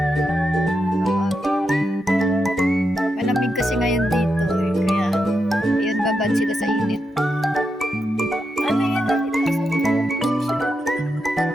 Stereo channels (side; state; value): both; normal; correlation 0.85